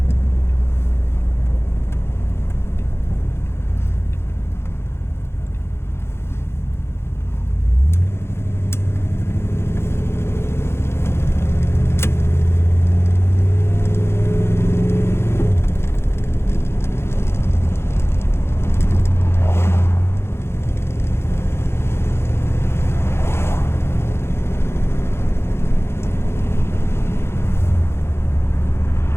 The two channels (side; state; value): right; late; 0.12 ms